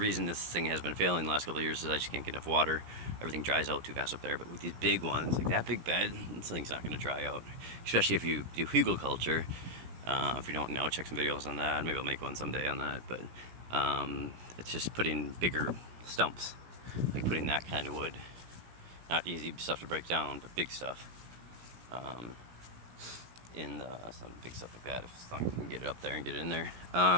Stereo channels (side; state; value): left; late; 16 ms